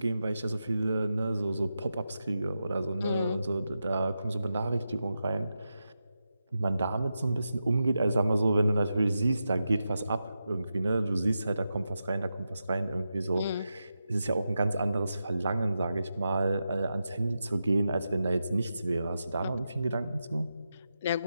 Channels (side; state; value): both; inverted; correlation -0.89